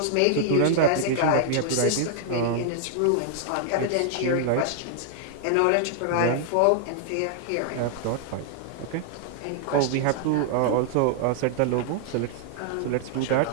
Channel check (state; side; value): different; both; correlation -0.01